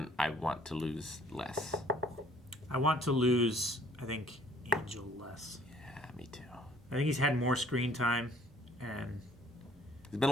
I want to lose less. I want to lose, I think, Angel less. Yeah, me too. I think he's had more screen time, and he's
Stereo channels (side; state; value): both; normal; correlation 0.58